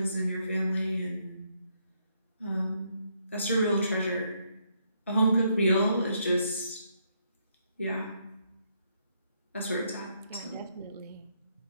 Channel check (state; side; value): inverted; both; correlation -0.75